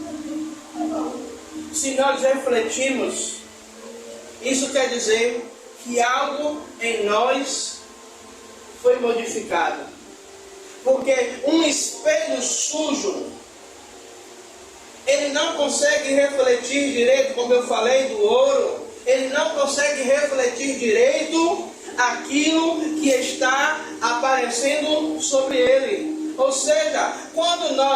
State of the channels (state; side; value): identical; both; correlation 1.00